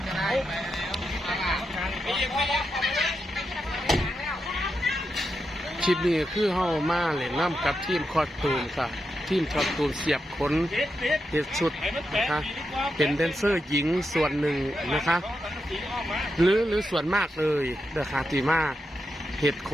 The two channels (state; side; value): normal; both; correlation 0.86